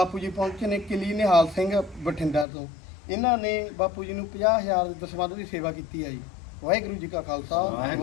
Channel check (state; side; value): drops out; right; at 2.5 s